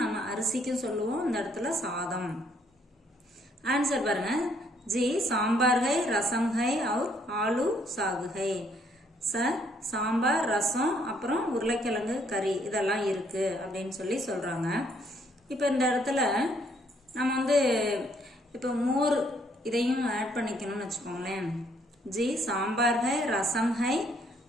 நம்ம அரிசிக்கும் சொல்லுவோம், இந்த இடத்துல சாதம். ஆன்சர் பாருங்க. जी सांबार है, रसम है और आलू साग है. சார் சாம்பார், ரசம், அப்புறம் உருளைக்கிழங்கு கறி இதெல்லாம் இருக்கு அப்படின்னு சொல்றாங்க. இப்போ இந்த இடத்துல நம்ம இப்போ மோர் இதையும் ஆட் பண்ணிக்கணும்னு வச்சுக்கோங்களேன். जी सांबार है, रसम है,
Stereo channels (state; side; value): normal; both; correlation 0.68